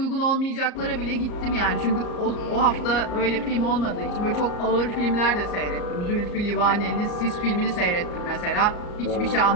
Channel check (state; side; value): late; right; 34 ms